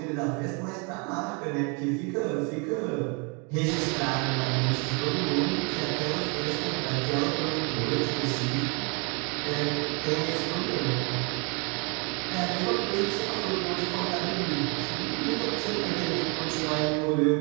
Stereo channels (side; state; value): left; quieter; 33.5 dB